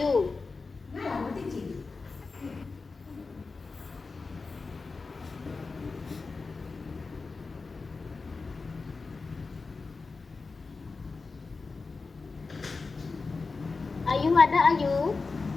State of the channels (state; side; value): quieter; right; 4.1 dB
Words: Ayu ada Ayu?